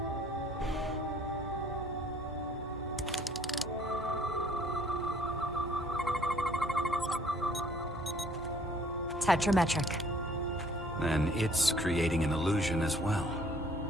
Tetrametric. Then it's creating an illusion as well.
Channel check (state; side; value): normal; both; correlation 0.58